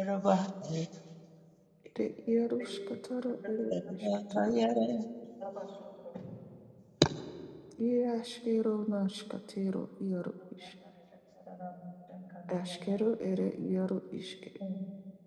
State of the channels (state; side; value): identical; both; correlation 1.00